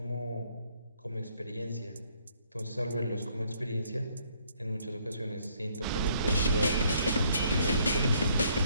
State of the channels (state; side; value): inverted; both; correlation -0.66